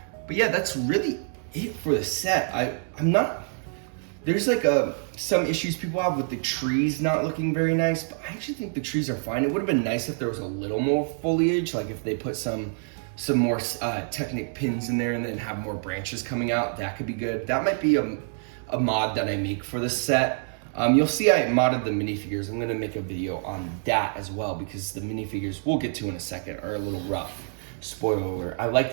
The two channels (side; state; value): left; silent; 60 dB below the other